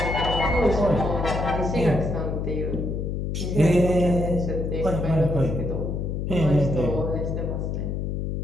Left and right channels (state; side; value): noise; left; hum, 2 dB below the sound